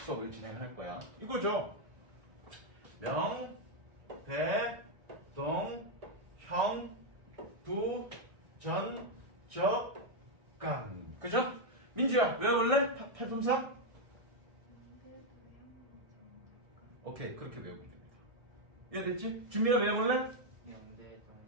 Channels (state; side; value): late; left; 1.6 ms